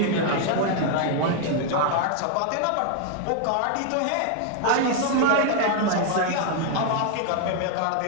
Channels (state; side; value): different; both; correlation 0.00